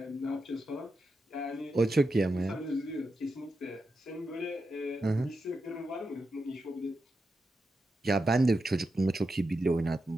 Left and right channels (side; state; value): both; normal; correlation 0.87